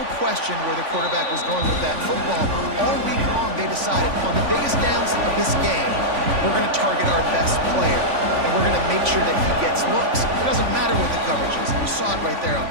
question where the quarterback was going with that football. All week long, they decided on the biggest downs of this game, we're going to target our best player, and we're going to make sure that he gets looks. It doesn't matter what the coverage is. You saw it right there on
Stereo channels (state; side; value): late; left; 3.5 ms